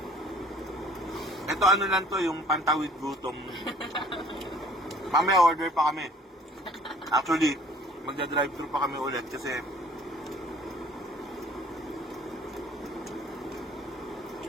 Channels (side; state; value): both; normal; correlation 0.54